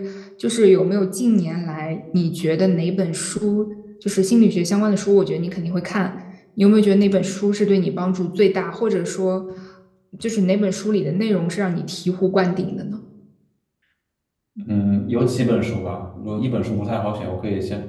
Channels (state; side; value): identical; both; correlation 1.00